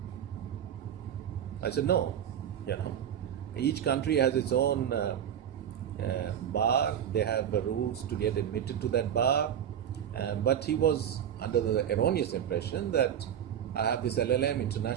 I said, "No. Each country has its own bar. They have rules to get admitted to that bar." But he was under the erroneous impression that I have this LLM,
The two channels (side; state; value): left; quieter; 9.5 dB